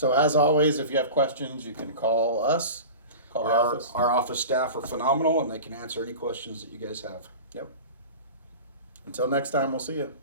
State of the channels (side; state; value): both; inverted; correlation -0.34